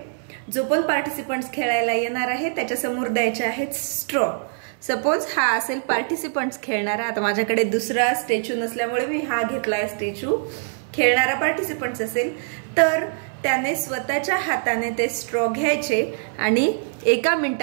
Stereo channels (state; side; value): silent; left; 63 dB below the other